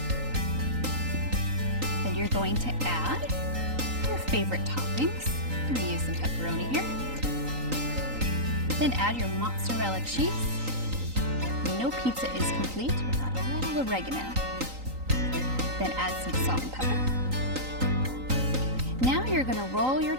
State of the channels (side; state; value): left; late; 3.9 ms